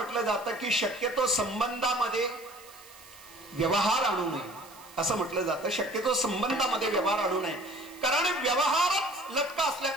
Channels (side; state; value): right; noise; hiss, 21 dB below the sound